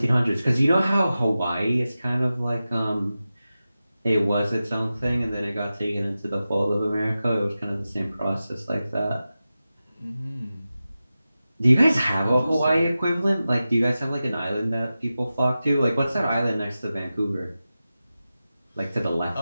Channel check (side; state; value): both; inverted; correlation -0.94